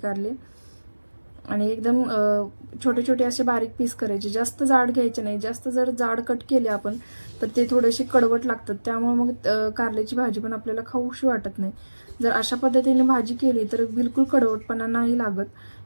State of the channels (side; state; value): both; inverted; correlation -1.00